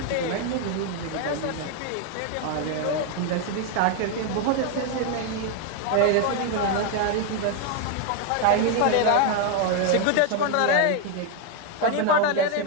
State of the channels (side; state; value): both; different; correlation 0.01